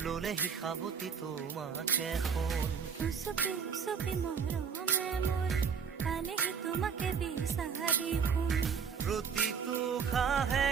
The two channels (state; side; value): quieter; left; 6.5 dB